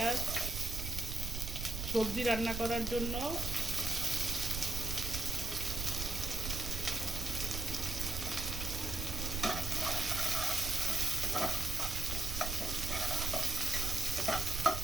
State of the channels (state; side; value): noise; right; rumble, 4 dB below the sound